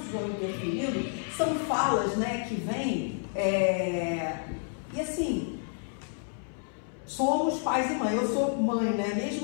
vão interferindo, são falas, né, que vêm, e assim, somos pais e mãe. Eu sou mãe, né,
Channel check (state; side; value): silent; right; 58 dB below the other